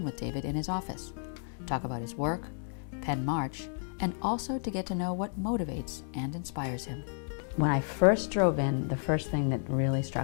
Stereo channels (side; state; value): right; silent; 57 dB below the other